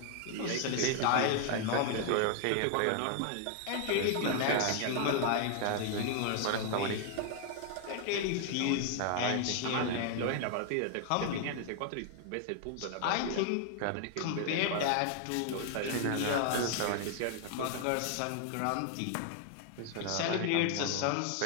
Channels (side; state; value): both; different; correlation 0.00